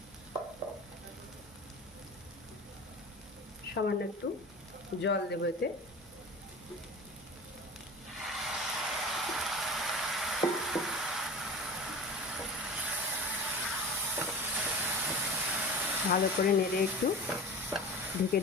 সামান্য একটু জল দেবো এতে। ভালো করে নেড়ে একটু ঢেকে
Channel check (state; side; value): normal; both; correlation 0.34